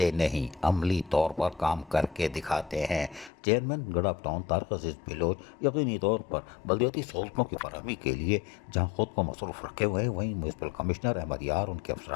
نہیں، عملی طور پر کام کر کے دکھاتے ہیں۔ چیئرمین گڈاپ ٹاؤن طارق عزیز بلوچ یقینی طور پر بلدیاتی سہولتوں کی فراہمی کے لیے جہاں خود کو مصروف رکھے ہوئے ہیں، وہیں میونسپل کمشنر احمد یار، ان کے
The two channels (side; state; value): right; drops out; at 3.3 s